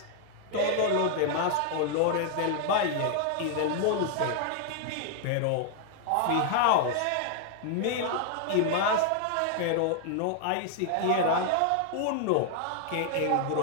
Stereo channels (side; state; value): both; different; correlation 0.00